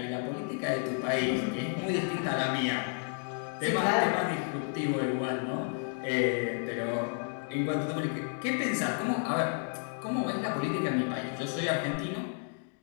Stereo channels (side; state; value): right; silent; 57 dB below the other